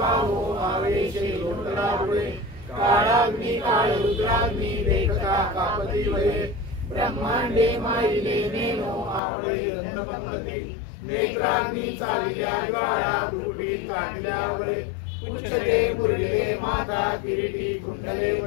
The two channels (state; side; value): drops out; right; at 9.2 s